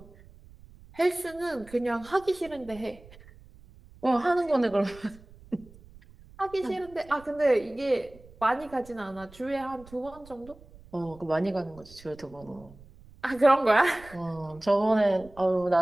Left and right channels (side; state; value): right; noise; rumble, 22 dB below the sound